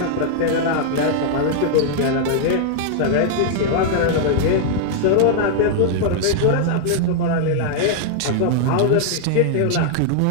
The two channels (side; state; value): both; different; correlation -0.01